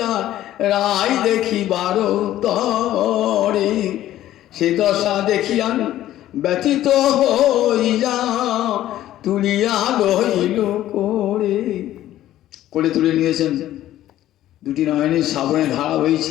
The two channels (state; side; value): quieter; right; 13.4 dB